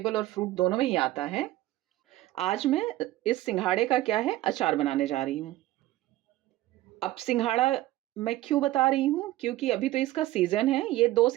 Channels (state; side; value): quieter; left; 16.2 dB